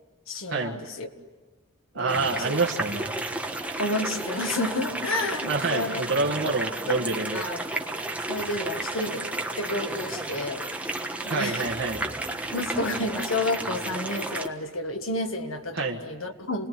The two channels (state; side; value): normal; both; correlation 0.08